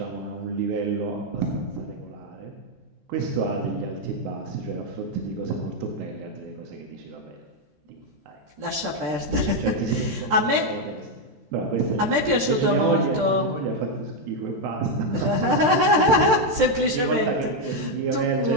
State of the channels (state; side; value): late; left; 14 ms